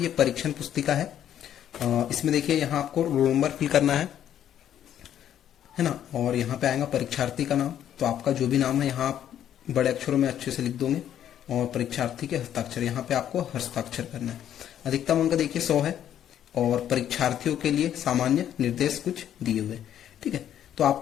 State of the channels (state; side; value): quieter; right; 10.5 dB